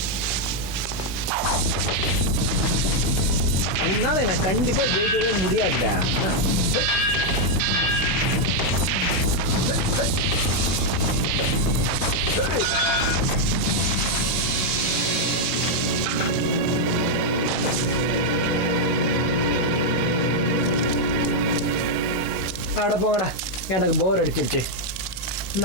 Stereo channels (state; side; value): late; right; 16 ms